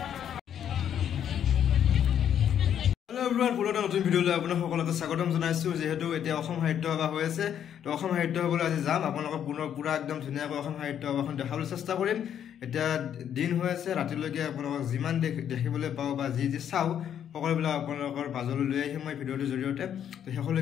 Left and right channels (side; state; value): right; quieter; 9.4 dB